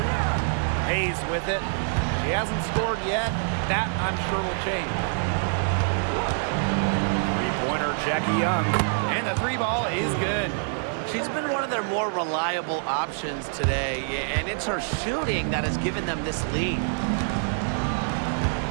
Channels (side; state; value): left; silent; 61 dB below the other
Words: Hayes with it. She hasn't scored yet. That, I'm sure, will change. Three-pointer, Jackie Young. And the 3-ball is good. She's been one of their more reliable options today, and it's her shooting that has given them this lead.